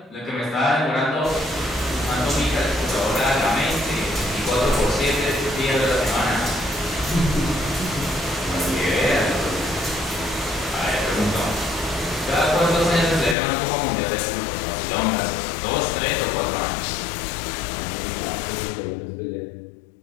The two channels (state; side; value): drops out; right; at 13.4 s